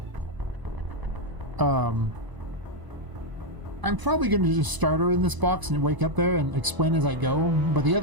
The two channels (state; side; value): late; left; 1.0 ms